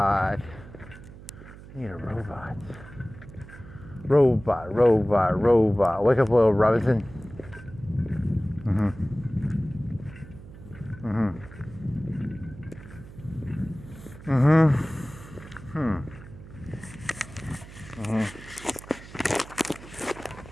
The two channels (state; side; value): noise; right; hum, 17 dB below the sound